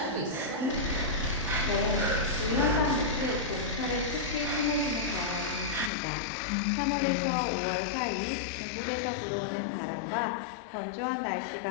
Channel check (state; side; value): drops out; right; at 5.9 s